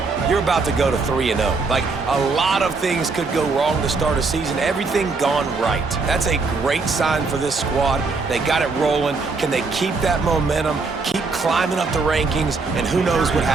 you're about to go to 3-0. Like, a lot of things could go wrong to start a season. Everything gone right. That's a great sign for this squad. They got it rolling. Can they keep that momentum, keep climbing up the rankings, and who knows what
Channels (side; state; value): left; quieter; 4.1 dB